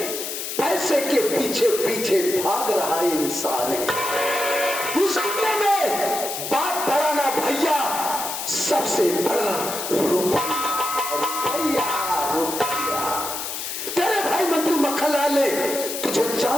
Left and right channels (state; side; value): noise; left; hiss, 5 dB below the sound